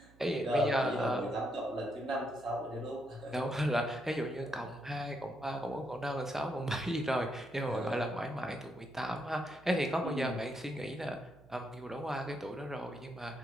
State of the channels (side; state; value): right; noise; hum, 25 dB below the sound